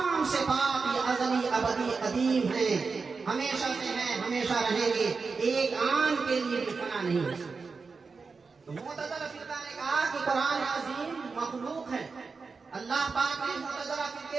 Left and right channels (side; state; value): left; quieter; 4.7 dB